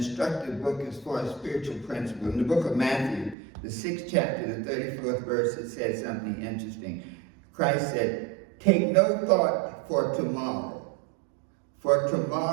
book as far as spiritual principles. In the book of Matthew, the 6th chapter, the 34th verse, it said something interesting. Christ said, take no thought for tomorrow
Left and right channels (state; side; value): drops out; left; at 3.4 s